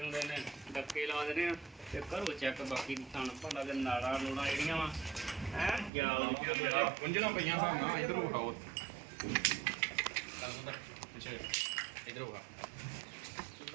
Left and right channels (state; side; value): drops out; left; at 5.9 s